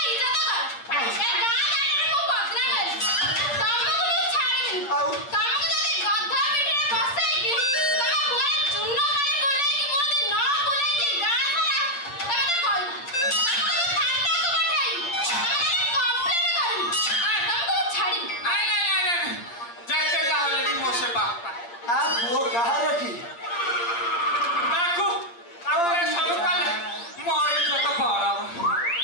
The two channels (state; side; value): late; right; 8.7 ms